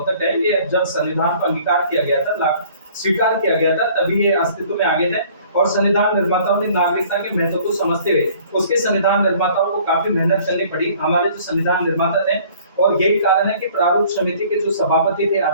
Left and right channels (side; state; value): both; inverted; correlation -0.54